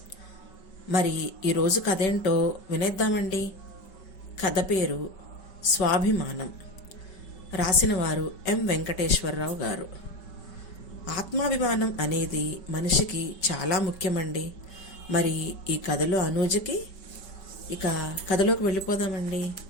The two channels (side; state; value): right; late; 5.3 ms